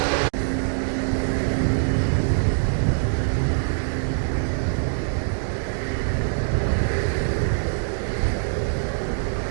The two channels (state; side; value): silent; left; digital silence